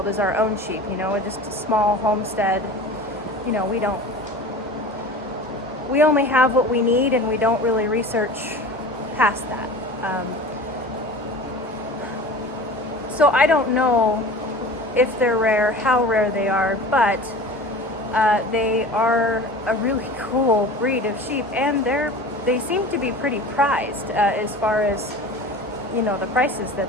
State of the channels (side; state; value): both; normal; correlation 0.37